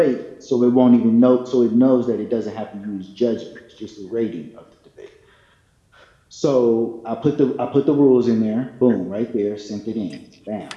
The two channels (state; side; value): identical; both; correlation 1.00